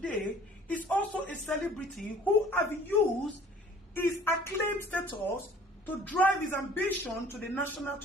is also a celebrity who have used his acclaimed status to drive his ambition to the national,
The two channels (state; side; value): normal; both; correlation 0.52